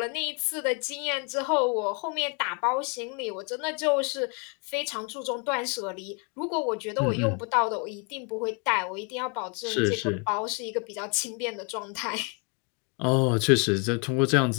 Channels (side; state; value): right; quieter; 34.7 dB